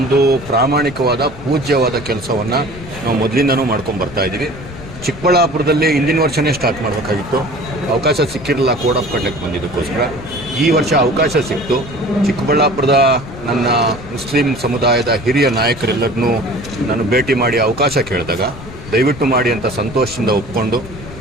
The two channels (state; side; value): noise; left; rumble, 14 dB below the sound